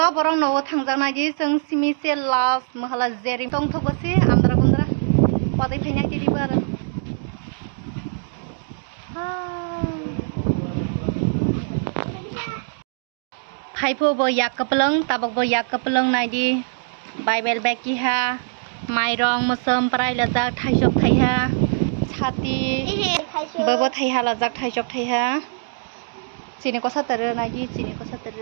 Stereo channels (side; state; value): left; silent; digital silence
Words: borong nawa thangjanai ji जों सिमिसे लास महला Jerry तंग थबसे आमद्रा गुन्द्रा वादै फैनाय दिदिबो आरो FIFO बो याकपलंग ताबक बो याकपलंग नायदि Bible बेकिहा माइरं मोसोम प्राय लजाक थाइजब थाइहा छाति बबो थाइहा लजाक थाइजब थाइहा Sini ko satere naji sini ko